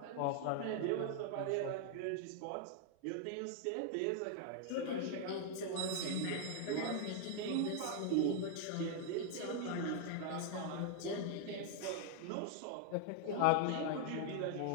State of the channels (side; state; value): both; different; correlation 0.00